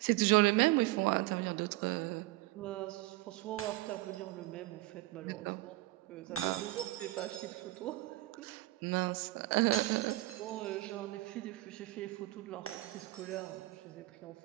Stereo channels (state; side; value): quieter; left; 18.5 dB